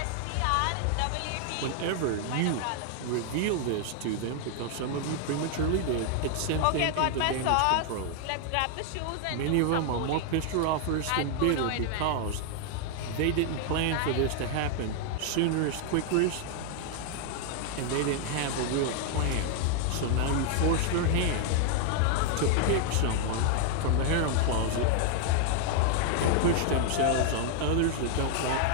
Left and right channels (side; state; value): both; different; correlation 0.00